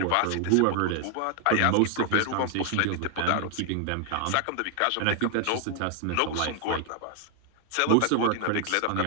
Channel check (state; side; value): different; both; correlation 0.00